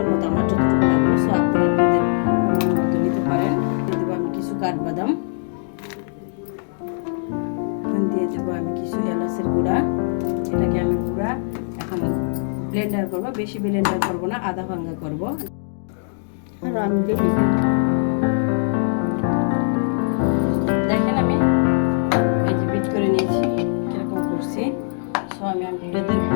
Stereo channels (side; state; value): right; silent; digital silence